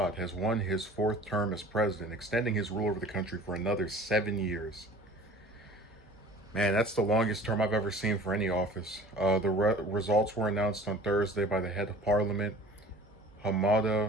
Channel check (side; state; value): both; normal; correlation 0.46